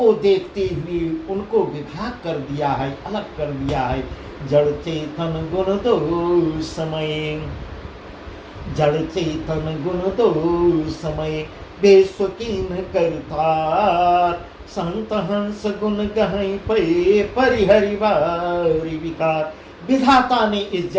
देखते हुए उनको विभाग कर दिया है, अलग कर दिया है। जड़ चेतन गुण दो समय, जड़ चेतन गुण दो समय, बेस्वकीन करतार। संत हंस गुण गहई पे, परिहरि वारि विकार। विधाता ने इस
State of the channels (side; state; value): both; identical; correlation 1.00